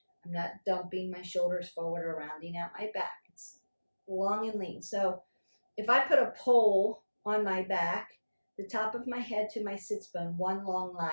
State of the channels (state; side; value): inverted; both; correlation -1.00